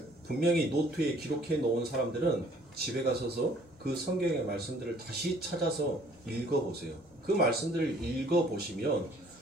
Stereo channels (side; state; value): both; normal; correlation 0.58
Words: 분명히 노트에 기록해 놓은 사람들은 집에 가서서 그 성경의 말씀들을 다시 찾아서 읽어보세요. 그 말씀들을 읽어보시면